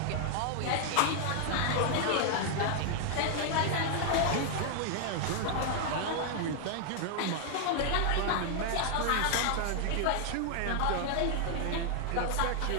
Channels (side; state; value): both; different; correlation 0.00